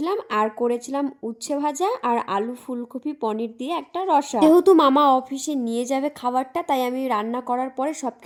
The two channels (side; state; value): both; identical; correlation 1.00